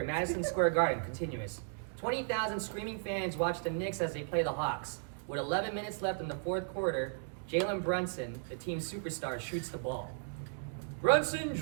Madison Square Garden, continuous. 20,000 screaming fans watch the Knicks as they play the Hawks. With 11 minutes left in the fourth quarter, Jalen Brunson, the team's superstar, shoots the ball. Brunson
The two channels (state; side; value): silent; left; digital silence